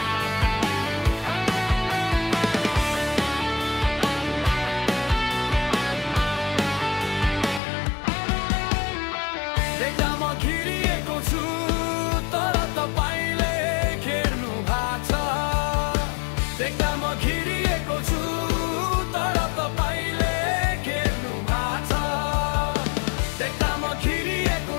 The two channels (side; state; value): right; drops out; at 7.6 s